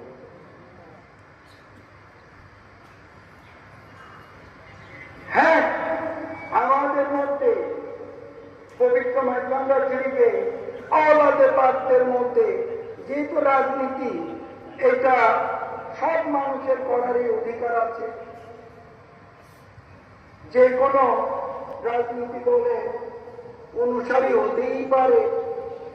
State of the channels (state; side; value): identical; both; correlation 1.00